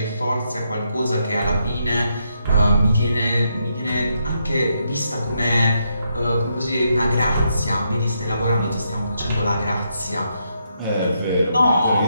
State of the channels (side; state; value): both; inverted; correlation -0.79